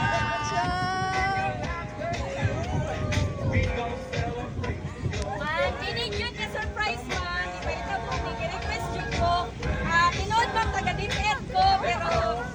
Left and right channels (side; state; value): both; identical; correlation 1.00